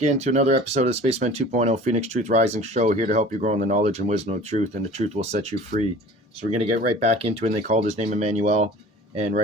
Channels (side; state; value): both; normal; correlation 0.44